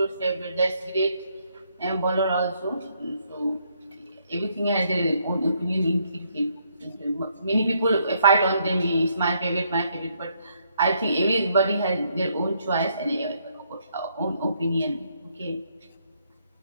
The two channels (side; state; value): both; inverted; correlation -0.72